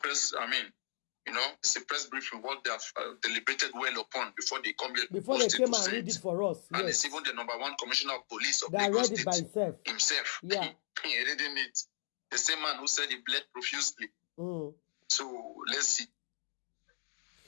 it's a press briefing, what they have deliberated well upon before they come here. Before they came and read it for us. And yes. it's even the #1 commissioner of police of that Lagos read it by himself. Yeah. He reading it. The same man who said he bled profusely. So let's see.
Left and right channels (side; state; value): right; silent; 54 dB below the other